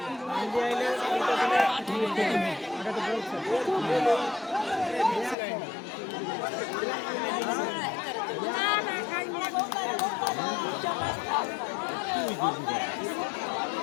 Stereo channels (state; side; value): drops out; right; at 5.4 s